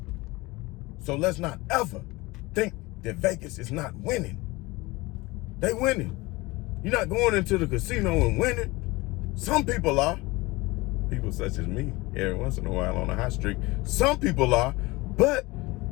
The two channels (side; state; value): right; quieter; 22.3 dB